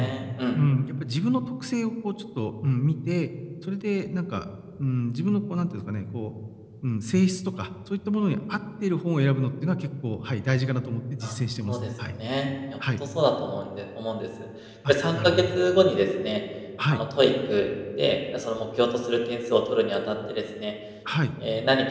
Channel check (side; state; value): both; identical; correlation 1.00